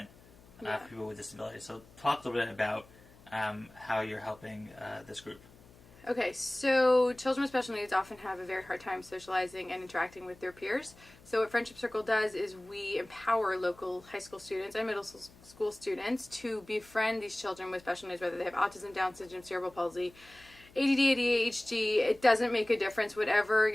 for people with disabilities. So talk a little bit about how you're helping this group. Okay, so children with special needs often have a very hard time socializing and interacting with their peers. So what Friendship Circle does is we empower local high school students and middle school students to befriend these children with special needs, whether they have autism, Down syndrome, cerebral palsy, ADD, ADHD. It doesn't make a difference. Whatever,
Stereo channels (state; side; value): noise; left; hum, 24 dB below the sound